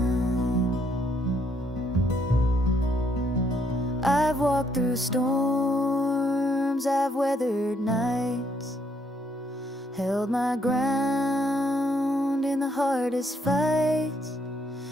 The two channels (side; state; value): both; normal; correlation 0.71